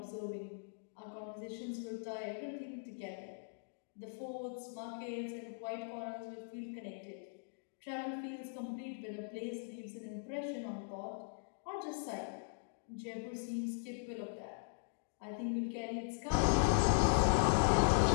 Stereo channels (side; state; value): right; silent; digital silence